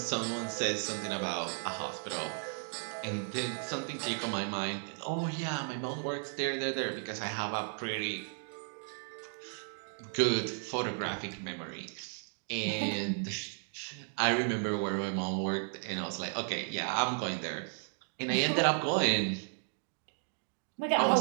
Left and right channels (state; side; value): silent; left; 55 dB below the other